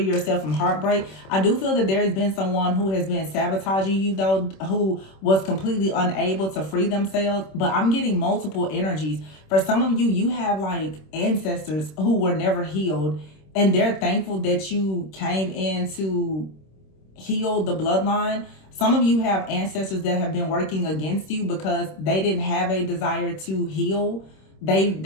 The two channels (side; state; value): right; late; 26 ms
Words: yourself from heartbreak. I do feel that there has been someone who has been sabotaging you though, who was completely unable to free themselves. But I'm getting multiple energies. For some of you, you have like ancestors who were never healed, and they're thankful that you came in to heal the bloodline. Some of you have ancestors that have been working against you because they didn't have a desire to heal.